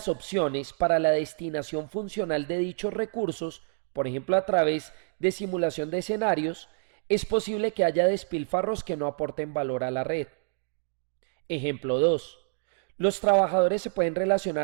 opciones para la destinación funcional de dichos recursos, por ejemplo a través de simulación de escenarios, es posible que haya despilfarros que no aporten valor a la red. Ejemplo 2. Los trabajadores se pueden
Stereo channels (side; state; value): left; silent; digital silence